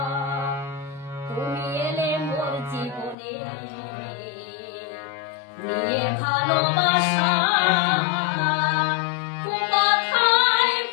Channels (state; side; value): drops out; right; at 3.2 s